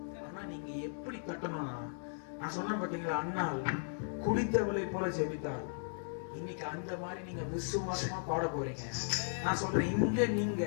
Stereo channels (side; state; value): right; silent; digital silence